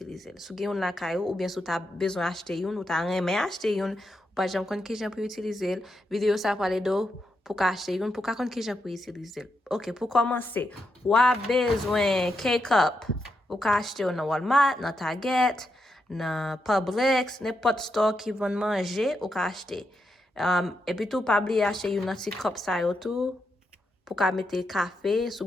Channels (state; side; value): normal; both; correlation 0.83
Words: l. Sou gen yon la kayo, ou bien sou ta bezon achete yon, ou ta reme achete yon, ou pa jan kon ki jan pou utilize l, video sa pale do pou ka achete yon, pou ka kon ki jan pou utilize l. Ok, pou komanse, wap bezwen K-Cup, ou ka achete yon nan Walmart, nan Target, nan Publix, nepot store ki von manje, ou ka achete. Et puis tout, pas oublier acheter une petite cup ça yo tout pour ka mettre café,